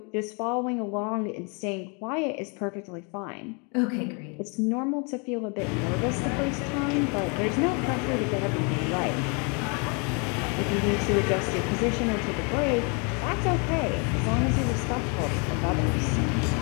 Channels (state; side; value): quieter; right; 34.7 dB